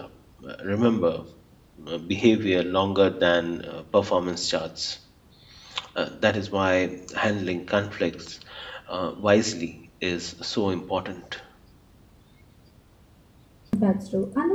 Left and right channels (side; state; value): both; identical; correlation 1.00